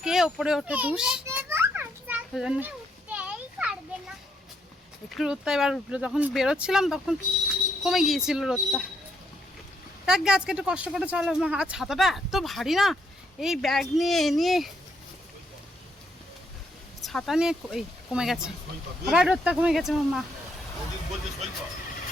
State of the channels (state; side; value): normal; both; correlation 0.74